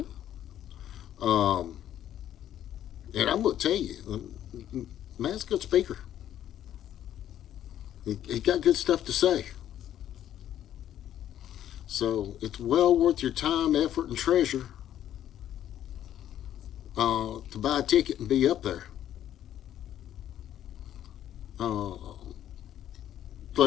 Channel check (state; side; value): quieter; right; 11.3 dB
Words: I'm going to tell you, man's a good speaker. He got good stuff to say. So it's well worth your time, effort, and treasure to buy a ticket and be up there.